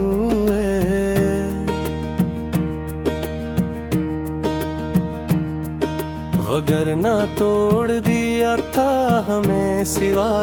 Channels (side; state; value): both; identical; correlation 1.00